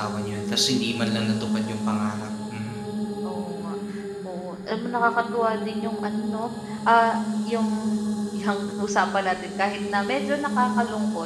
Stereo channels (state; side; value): identical; both; correlation 1.00